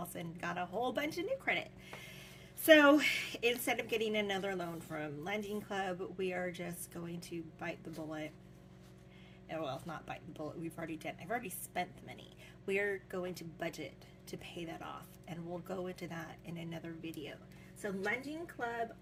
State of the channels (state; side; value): identical; both; correlation 1.00